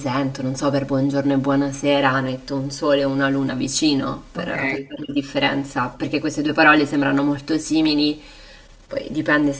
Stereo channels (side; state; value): both; identical; correlation 1.00